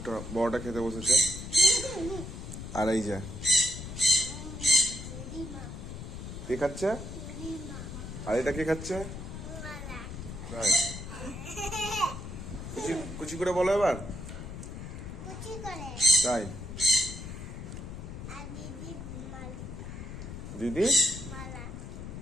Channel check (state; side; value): noise; left; rumble, 9 dB below the sound